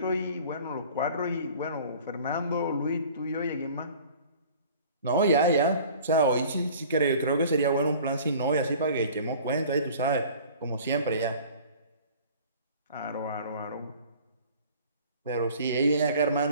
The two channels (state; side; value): inverted; both; correlation -0.46